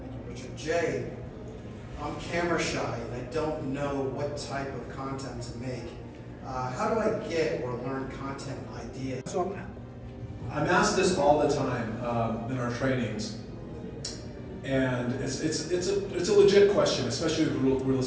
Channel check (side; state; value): both; identical; correlation 1.00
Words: you, Richard. Jay, I'm camera shy and I don't know what type of content to make. How do I get or learn content ideas? So I'm asked this all the time in our trainings, and it's a legit question, especially with real